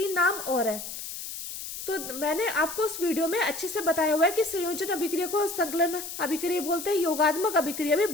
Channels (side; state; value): left; noise; hiss, 8 dB below the sound